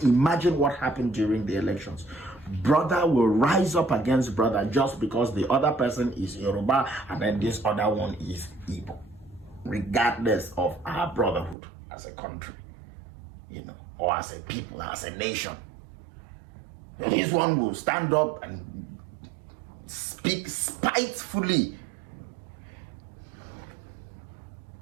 imagine what happened during the elections. Brother will rise up against brother just because the other person is Yoruba and then this other one is Igbo, regardless of our brotherhood as a country, you know, or as a people, as a nation. This one will stand up and speak spitefully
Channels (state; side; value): drops out; left; at 11.6 s